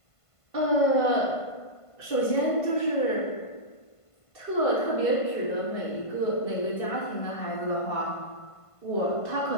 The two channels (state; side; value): late; right; 1.5 ms